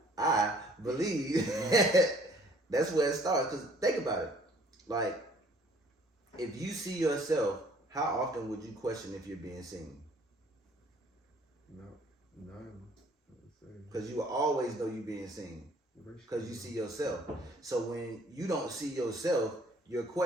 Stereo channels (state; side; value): normal; both; correlation 0.57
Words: believe that's where it starts. Because think about it. Like, if you see yourself, how often would you question if you're being seen? No. No. Because you will always know you being seen. Because you see yourself. So when you don't see yourself, you're